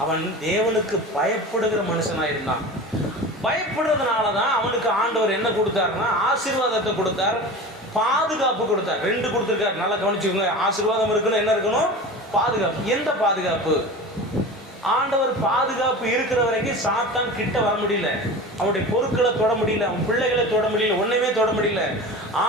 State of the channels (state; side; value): normal; both; correlation 0.33